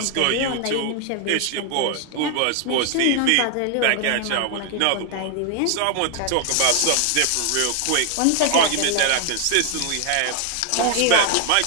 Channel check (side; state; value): both; different; correlation 0.00